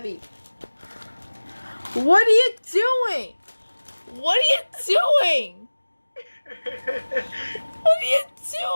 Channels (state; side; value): inverted; both; correlation -1.00